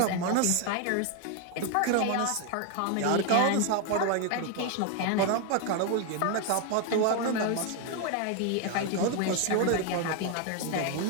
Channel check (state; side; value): different; both; correlation 0.01